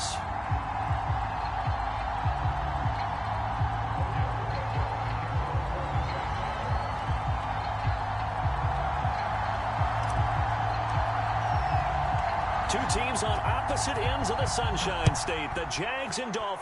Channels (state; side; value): identical; both; correlation 1.00